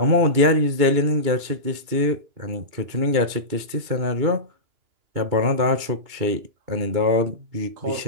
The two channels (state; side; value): late; left; 2.9 ms